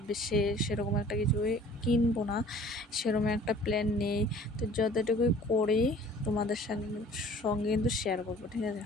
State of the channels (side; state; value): both; normal; correlation 0.49